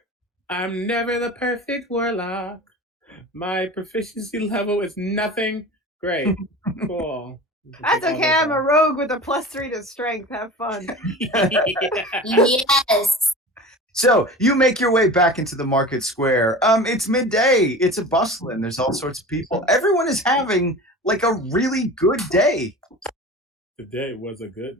I'm never the perfect warlock. My proficiency level is nothing. Great. Cool. That's okay. I'm a rogue with a +3 to strength. Have fun. Yes. So you make your way back into the market square. It's midday. It's a bustling. There's all sorts of people. Everyone is having like a really good day. Today was a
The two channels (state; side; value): normal; both; correlation 0.35